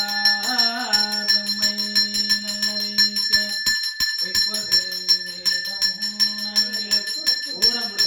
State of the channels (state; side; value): identical; both; correlation 1.00